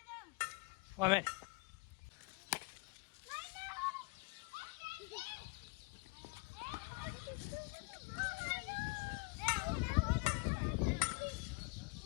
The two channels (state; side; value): quieter; right; 28.1 dB